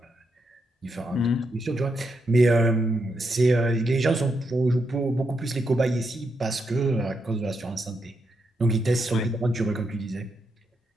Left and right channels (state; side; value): normal; both; correlation 0.82